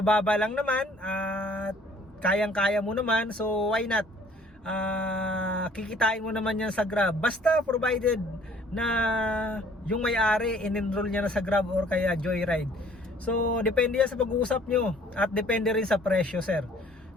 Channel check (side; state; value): both; normal; correlation 0.56